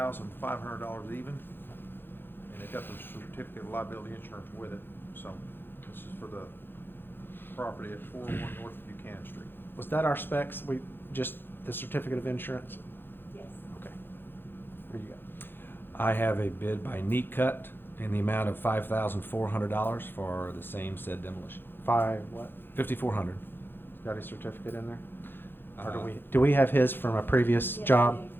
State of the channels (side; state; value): right; late; 0.10 ms